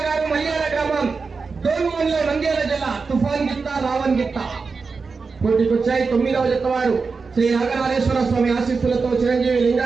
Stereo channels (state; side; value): quieter; left; 4.7 dB